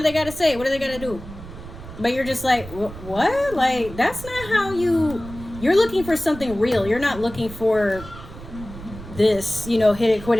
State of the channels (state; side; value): noise; right; rumble, 14 dB below the sound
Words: they got to say? What do they got to do? But you're just like, what? Like, that's not how you're looking for something real. You're not looking for this, you know, hit it, quit